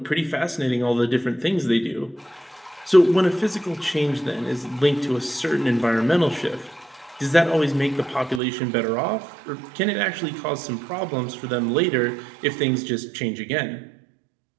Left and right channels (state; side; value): drops out; left; at 8.4 s